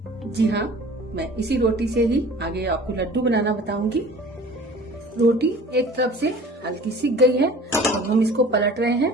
जी हाँ, मैं इसी रोटी से ही आगे आपको लड्डू बनाना बताऊंगी। रोटी एक तरफ से हल्की सिक गई है, अब हम इसको पलट रहे हैं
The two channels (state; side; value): normal; both; correlation 0.45